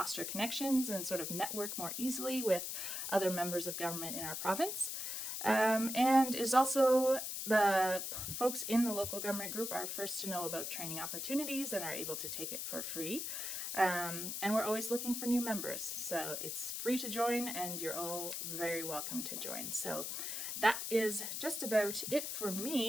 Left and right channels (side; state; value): left; noise; hiss, 4 dB below the sound